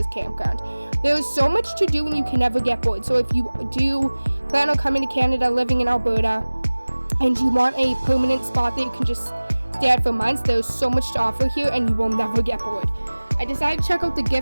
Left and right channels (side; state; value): both; inverted; correlation -1.00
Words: campground. There is so much to do and you can never get bored. So if you do plan on coming to Canada, living in Alberta, and you want a permanent spot that you can just stay at for months, there's so much to offer here and you will never get bored. I decided to check out the